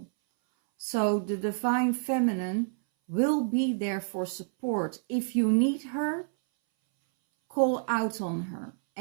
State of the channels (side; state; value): left; silent; 59 dB below the other